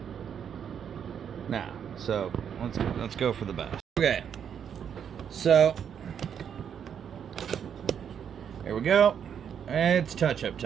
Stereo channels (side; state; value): left; quieter; 8.1 dB